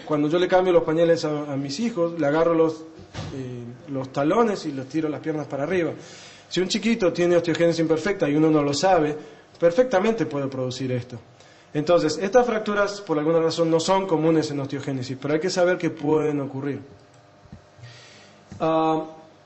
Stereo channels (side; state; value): both; identical; correlation 1.00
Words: Cuando yo le cambio los pañales a mis hijos, le agarro los talones y los tiro las piernas para arriba. Si un chiquito tiene osteogénesis imperfecta y uno no lo sabe, perfectamente puede producir esto. Entonces, estas fracturas por alguna razón no son comunes en osteogénesis, pero hay que saber que pueden ocurrir.